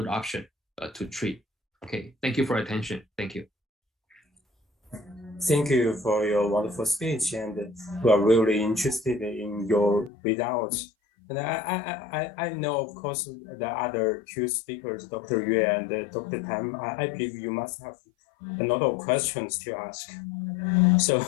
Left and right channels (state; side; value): drops out; right; at 10.1 s